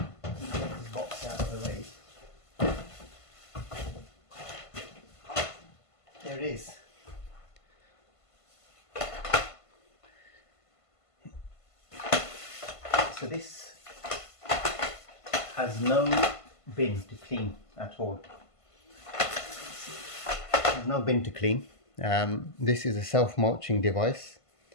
this box out of the way. There it is. So this has no bin to clean at all. There's no bin to clean. This is a self-mulching device.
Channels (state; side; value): late; right; 1.5 ms